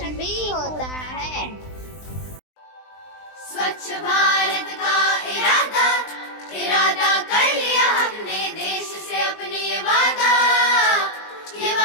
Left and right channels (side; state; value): right; late; 20 ms